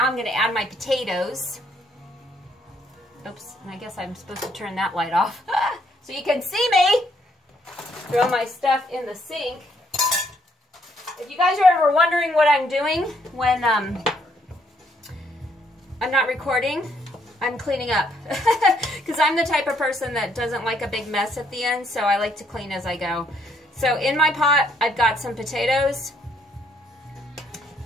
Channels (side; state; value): both; normal; correlation 0.70